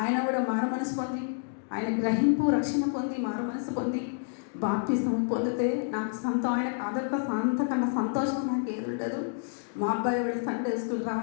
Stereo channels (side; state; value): right; silent; digital silence